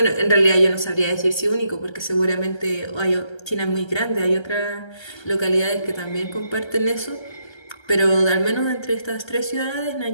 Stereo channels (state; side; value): late; right; 1.3 ms